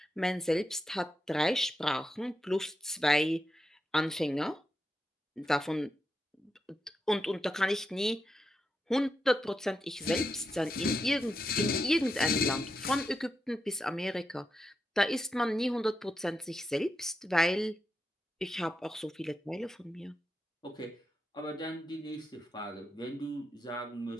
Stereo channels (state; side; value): normal; both; correlation 0.86